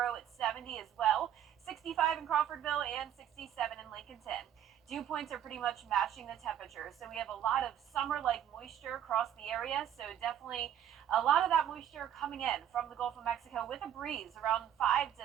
at 70 as well, 65 in Crawfordville, and 67 in Lincolnton. Dew points are pretty much matching the temperature, so we have a lot of summer-like moisture across the area, so definitely a lot of that moisture coming in from the Gulf of Mexico with a breeze around 5 to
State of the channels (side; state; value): left; quieter; 10.2 dB